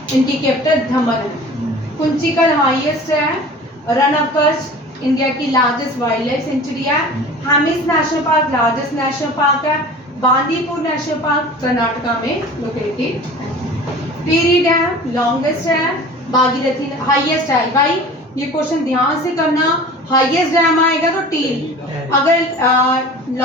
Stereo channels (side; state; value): both; normal; correlation 0.40